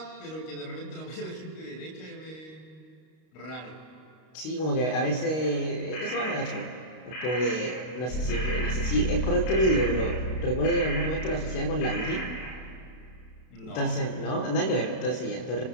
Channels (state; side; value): late; right; 32 ms